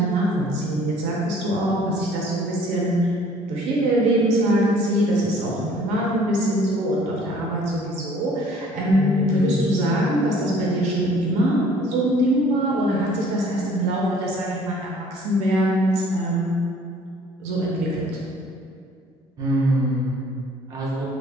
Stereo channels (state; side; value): normal; both; correlation 0.55